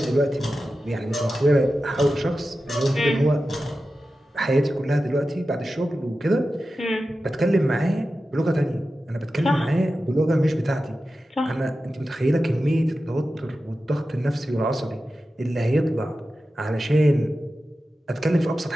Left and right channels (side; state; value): both; normal; correlation 0.93